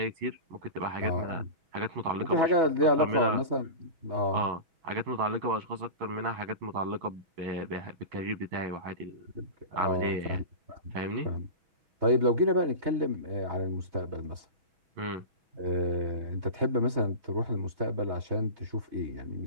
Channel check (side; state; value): left; late; 6.2 ms